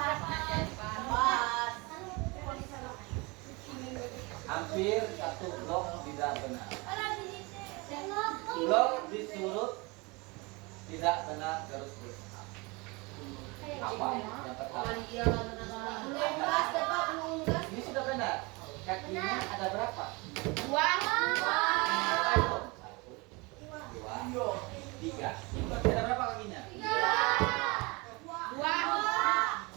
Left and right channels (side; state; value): left; quieter; 26.6 dB